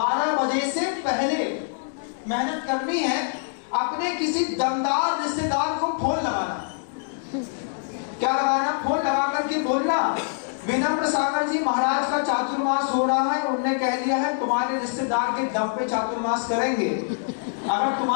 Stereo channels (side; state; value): right; silent; digital silence